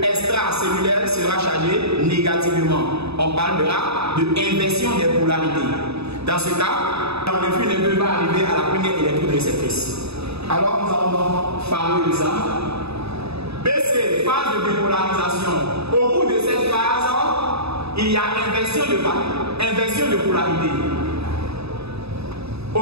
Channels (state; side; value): late; left; 0.79 ms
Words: extracellulaire sera chargé négativement. On parlera de inversion des polarités. Dans ce cas, l'influx nerveux va arriver à la première électrode réceptrice. Alors nous allons parler de ça. BC, phase de dépolarisation. Au bout de cette phase, il y a inversion de polarité. Au